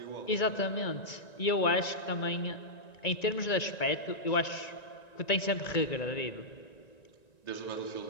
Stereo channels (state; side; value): late; right; 1.9 ms